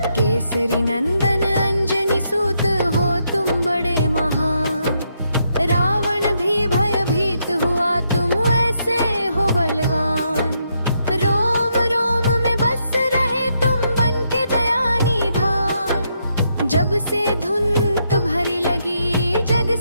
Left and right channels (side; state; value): both; inverted; correlation -0.78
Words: केसरी नंदन अंजनी सूत हो तुम बड़े महान। रावण भी भयभीत हुआ, तुम ऐसे हो बलवान। रोम रोम में बस रहे तुम बन के दया निधान। जब से धुन तुम्हारी लगी, जग